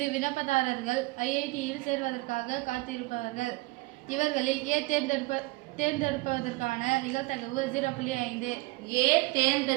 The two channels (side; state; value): left; quieter; 22.5 dB